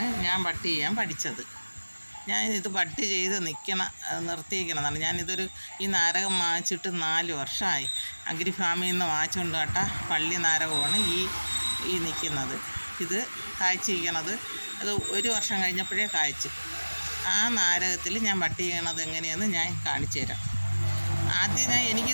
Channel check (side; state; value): both; inverted; correlation -1.00